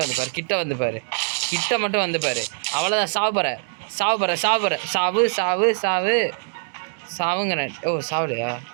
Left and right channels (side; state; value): left; silent; digital silence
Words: வந்து பாரு, கிட்ட வந்து பாரு, கிட்ட மட்டும் வந்து பாரு. அவ்வளோதான். சாவு சாவுங்கிறேன். ஓ சாவுலையா?